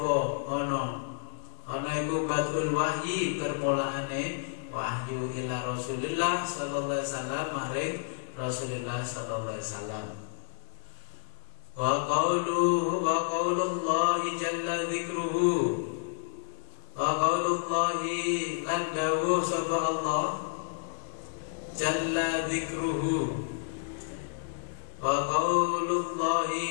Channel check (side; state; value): right; silent; digital silence